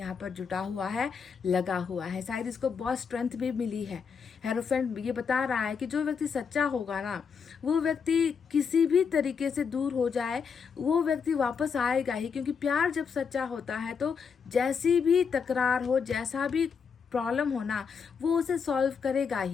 पर जुटा हुआ है, लगा हुआ है। शायद इसको बहुत स्ट्रेंथ भी मिली है। हेरोफेंट ये बता रहा है कि जो व्यक्ति सच्चा होगा ना, वो व्यक्ति किसी भी तरीके से दूर हो जाए, वो व्यक्ति वापस आएगा ही। क्योंकि प्यार जब सच्चा होता है तो जैसी भी तकरार हो, जैसा भी प्रॉब्लम हो ना, वो उसे सॉल्व करेगा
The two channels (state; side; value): quieter; right; 6.2 dB